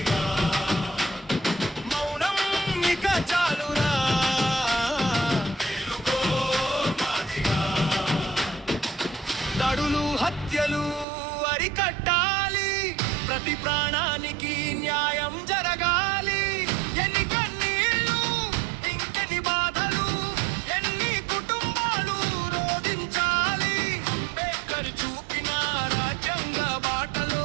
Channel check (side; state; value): left; drops out; at 11.1 s